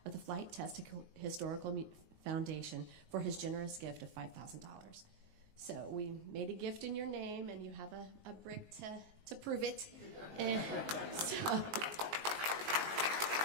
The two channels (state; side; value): late; left; 19 ms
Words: of the Flight Test Historical Foundation for his generous gift of $5,000. So we made a gift in your name, and you have a brick to prove it. And so,